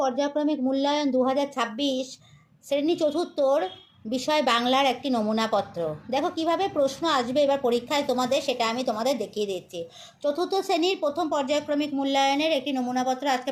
মূল্যায়ন 2026 শ্রেণী চতুর্থর বিষয় বাংলার একটি নমুনাপত্র। দেখো কিভাবে প্রশ্ন আসবে এবার পরীক্ষায় তোমাদের, সেটা আমি তোমাদের দেখিয়ে দিচ্ছি। চতুর্থ শ্রেণীর প্রথম পর্যায়ক্রমিক মূল্যায়নের একটি নমুনাপত্র আজকে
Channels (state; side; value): identical; both; correlation 1.00